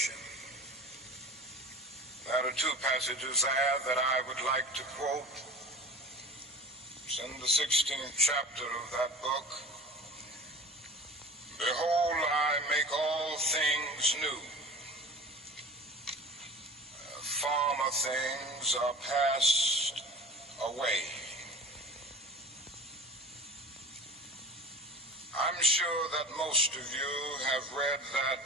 There are two passages there that I would like to quote. It's in the 16th chapter of that book. Behold, I make all things new. Former things are passed away. I'm sure that most of you have read that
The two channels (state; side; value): normal; both; correlation 0.36